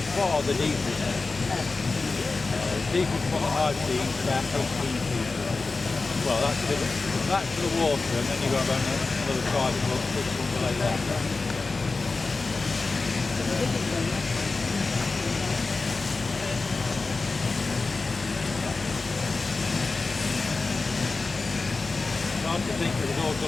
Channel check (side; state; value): right; quieter; 3.8 dB